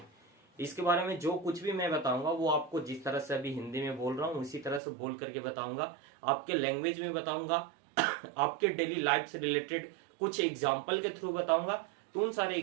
इसके बारे में जो कुछ भी मैं बताऊंगा वो आपको जिस तरह से अभी हिंदी में बोल रहा हूँ उसी तरह से बोल करके बताऊंगा, आपके लैंग्वेज में बताऊंगा, आपके डेली लाइफ से रिलेटेड कुछ एग्जाम्पल के थ्रू बताऊंगा। तो उन सारे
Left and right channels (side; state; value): left; drops out; at 4.8 s